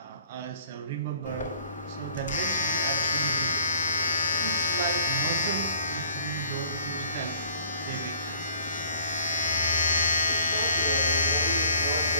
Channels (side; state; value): both; inverted; correlation -0.54